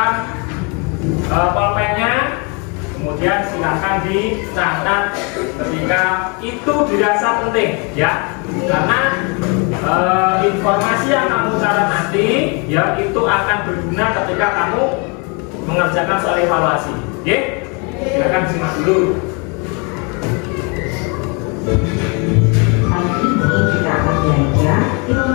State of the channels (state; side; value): quieter; right; 33.1 dB